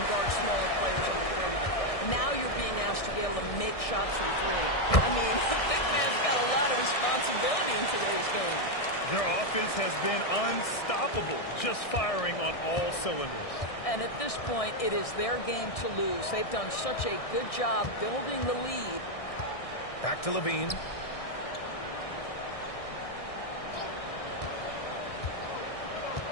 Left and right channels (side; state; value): right; late; 1.6 ms